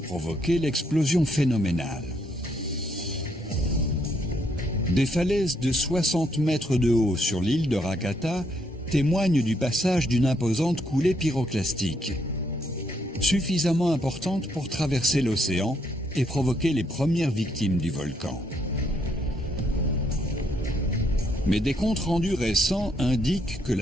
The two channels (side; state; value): both; normal; correlation 0.73